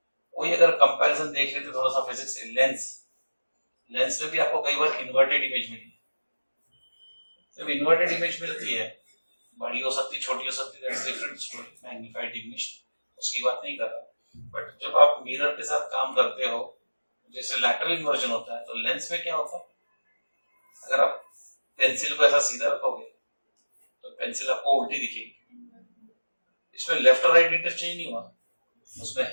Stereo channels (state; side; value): inverted; both; correlation -1.00